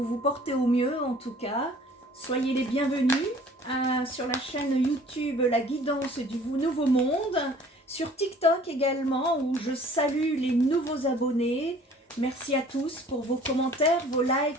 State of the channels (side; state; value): both; normal; correlation 0.52